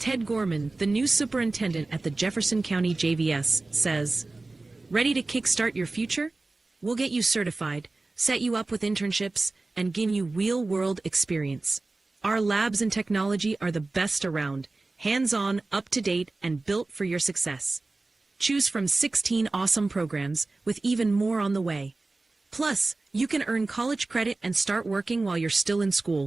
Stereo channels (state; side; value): quieter; left; 3.3 dB